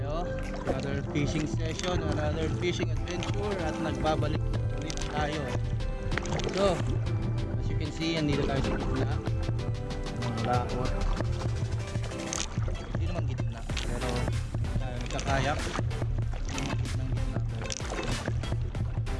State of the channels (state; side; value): identical; both; correlation 1.00